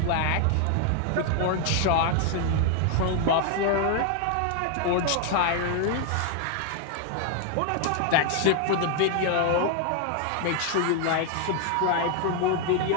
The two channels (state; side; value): different; both; correlation 0.00